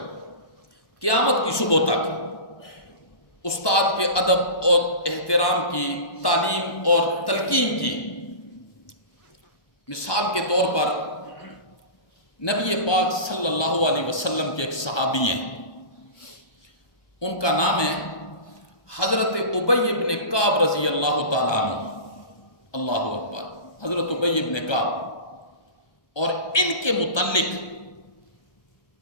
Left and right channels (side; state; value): right; late; 1.2 ms